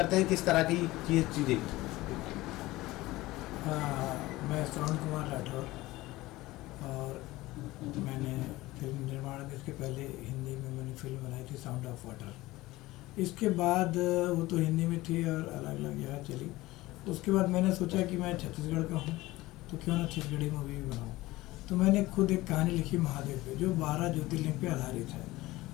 हैं किस तरह की ये चीज़ें। मैं श्रवण कुमार राठौर और मैंने फिल्म निर्माण में इसके पहले हिंदी में मैंने फिल्म बनाई थी साउंड ऑफ वाटर। इसके बाद वो तो हिंदी में थी और अलग अलग जगह चली। उसके बाद मैंने सोचा कि मैं छत्तीसगढ़ का हूँ तो क्यों ना छत्तीसगढ़ी मूवी भी बनाऊँ। तो मैंने खुद एक कहानी लिखी महादेव पे, जो 12 ज्योतिर्लिंग पे आधारित है।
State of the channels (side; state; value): right; quieter; 18.7 dB